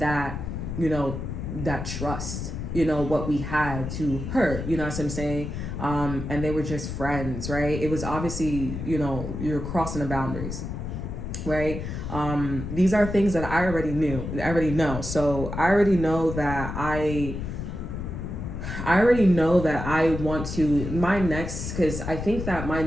that trust, what we had to her, you know what I'm saying? And they were just friends, right? It was obviously, you're crossing the boundaries, right? These are things that I already know. So I already know that I want to, because I think that my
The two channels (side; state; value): left; noise; rumble, 6 dB below the sound